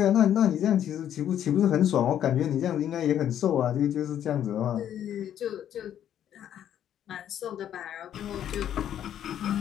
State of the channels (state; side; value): quieter; right; 10.4 dB